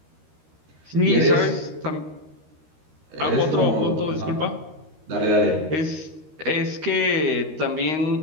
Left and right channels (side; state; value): left; late; 13 ms